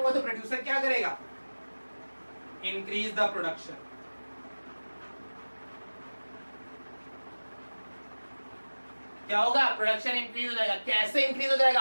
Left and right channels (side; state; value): both; inverted; correlation -1.00